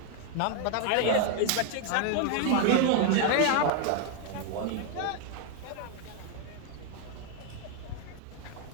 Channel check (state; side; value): different; both; correlation 0.01